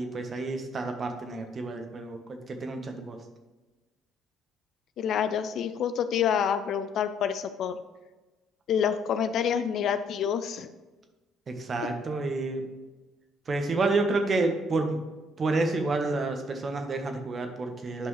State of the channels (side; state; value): both; normal; correlation 0.67